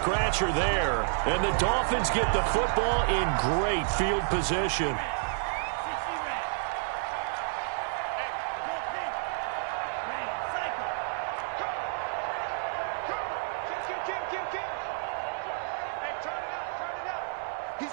there. And the Dolphins get the football in great field position.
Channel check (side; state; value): left; silent; digital silence